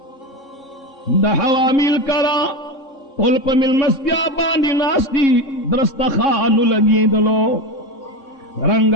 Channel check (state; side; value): late; right; 3.6 ms